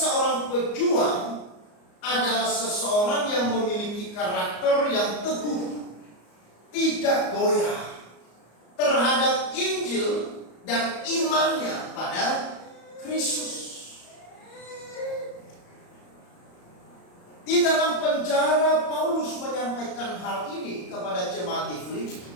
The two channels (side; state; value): right; late; 34 ms